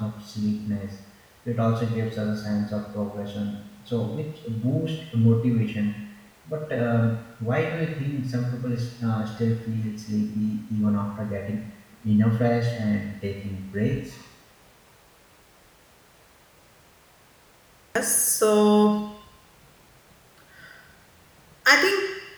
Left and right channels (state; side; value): identical; both; correlation 1.00